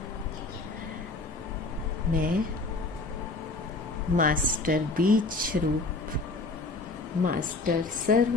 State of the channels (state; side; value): quieter; right; 3.3 dB